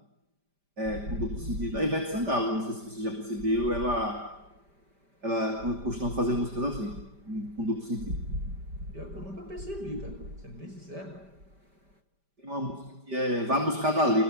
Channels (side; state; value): left; late; 5.1 ms